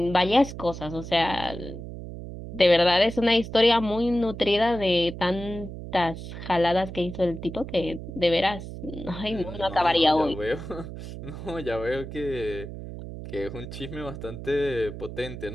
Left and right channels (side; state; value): right; noise; hum, 10 dB below the sound